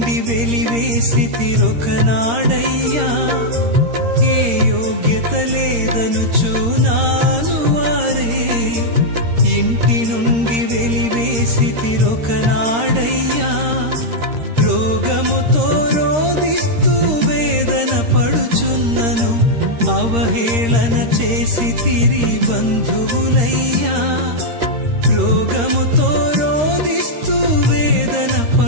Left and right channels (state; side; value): late; left; 13 ms